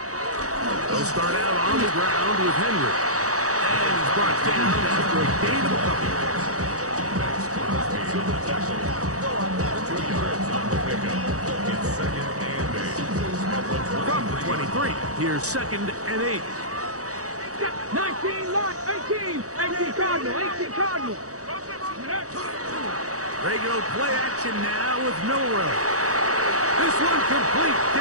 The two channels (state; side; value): late; left; 0.66 ms